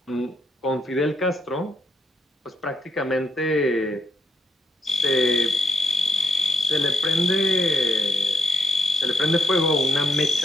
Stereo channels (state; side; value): normal; both; correlation 0.78